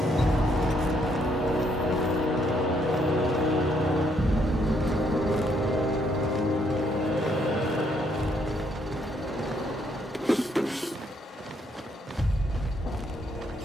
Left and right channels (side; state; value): both; normal; correlation 0.71